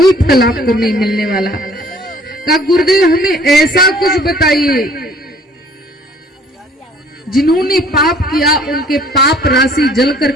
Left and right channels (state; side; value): normal; both; correlation 0.56